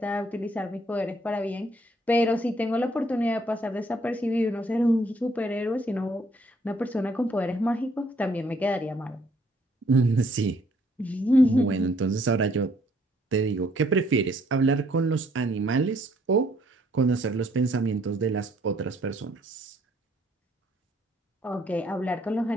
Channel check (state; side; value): normal; both; correlation 0.66